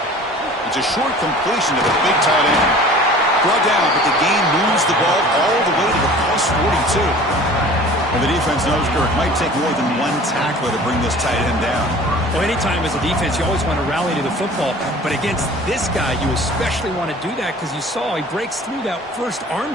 It's a short completion to the big tight end. Brought down, but the gain moves the ball all the way to the plus 42. And the defense knows it might take more than one tackler to bring this tight end down. Well, anytime as a defense, you always want to rally to the football. But against this guy, you especially want to do that because you saw he breaks through that first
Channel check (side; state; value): both; normal; correlation 0.45